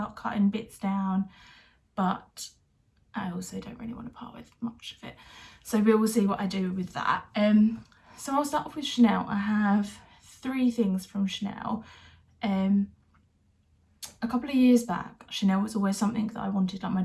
cutting bits down, but I also don't really want to part with much of it. So we will see what I do with that. So I'll start off with Chanel. I have 3 things from Chanel. A couple of years back, Chanel was always something that I wanted. Like my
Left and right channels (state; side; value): identical; both; correlation 1.00